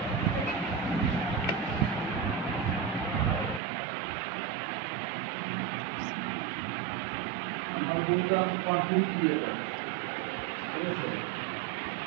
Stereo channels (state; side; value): drops out; left; at 3.6 s